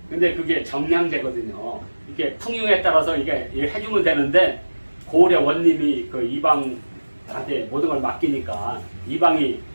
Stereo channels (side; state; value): both; inverted; correlation -1.00